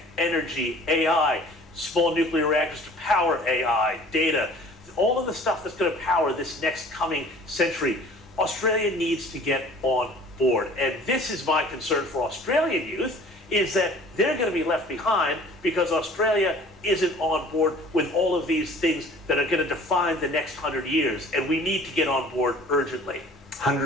energy, AI, small nuclear reactors to power AI, data, all of the stuff that's going to power this next coming century. Australia needs to get on board. And this is my concern for Australian youth, is that they're going to be left behind because Australia isn't on board with all of these things that are going to define the next 100 years. And we need to get on board urgently.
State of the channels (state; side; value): normal; both; correlation 0.49